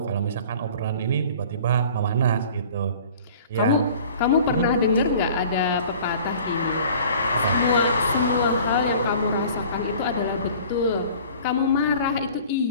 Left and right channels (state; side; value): inverted; both; correlation -0.47